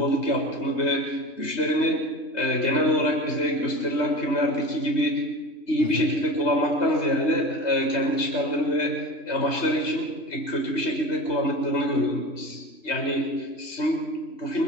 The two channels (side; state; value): right; late; 3.2 ms